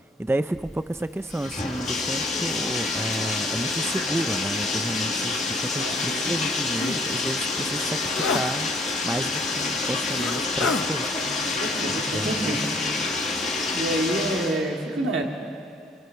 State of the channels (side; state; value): both; normal; correlation 0.60